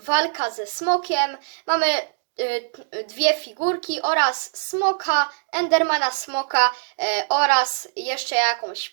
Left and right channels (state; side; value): silent; left; digital silence